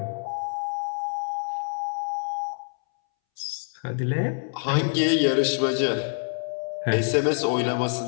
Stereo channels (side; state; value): right; silent; 61 dB below the other